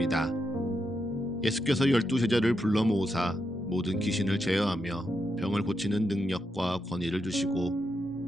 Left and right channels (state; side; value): normal; both; correlation 0.84